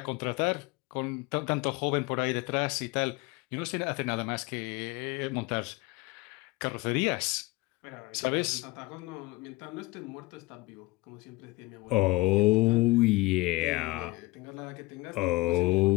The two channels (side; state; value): right; quieter; 21.7 dB